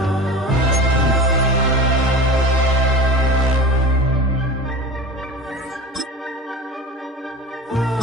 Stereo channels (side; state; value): both; normal; correlation 0.33